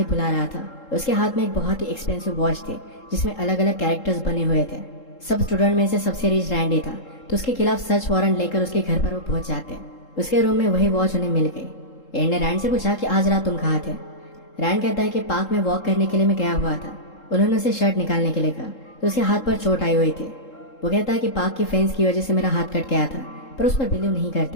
बुला रहा था। उसके हाथ में एक बहुत ही एक्सपेंसिव वॉच थी जिसमें अलग अलग कैरेक्टर्स बने हुए थे। सब स्टूडेंट में से सबसे रिच रैंडी था तो उसके खिलाफ सर्च वारंट लेकर उसके घर पर वो पहुंच जाते हैं। उसके रूम में वही वॉच उन्हें मिल गई। एड ने रैंड से पूछा कि आज रात तुम कहाँ थे। रैंड कहता है कि पार्क में वॉक करने के लिए मैं गया हुआ था। उन्होंने उसे शर्ट निकालने के लिए कहा तो उसके हाथ पर चोट आई हुई थी। वो कहता है कि पार्क की फेंस की वजह से मेरा हाथ कट गया था, पर उस पर बिलीव नहीं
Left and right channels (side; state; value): right; late; 3.7 ms